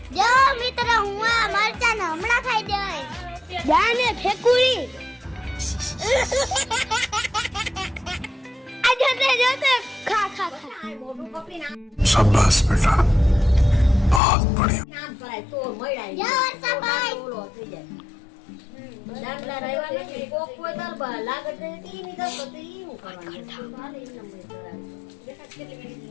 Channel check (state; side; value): drops out; right; at 14.2 s